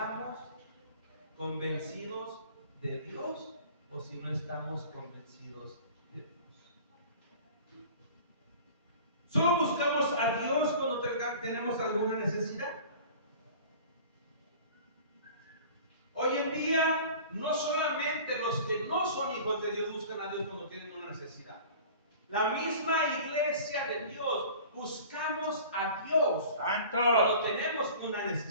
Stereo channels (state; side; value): inverted; both; correlation -0.42